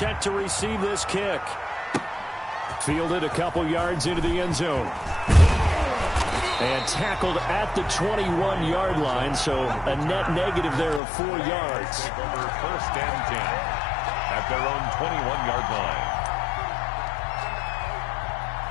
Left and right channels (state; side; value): drops out; right; at 11.0 s